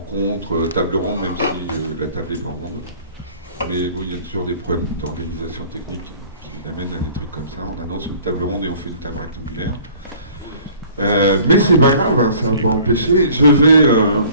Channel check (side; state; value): both; inverted; correlation -0.51